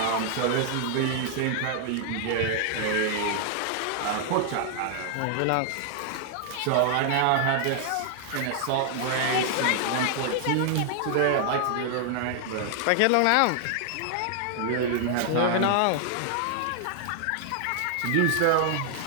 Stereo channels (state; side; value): different; both; correlation 0.00